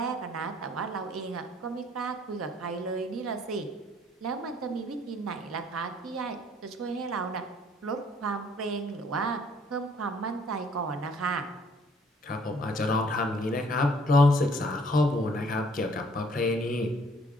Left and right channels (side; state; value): both; normal; correlation 0.60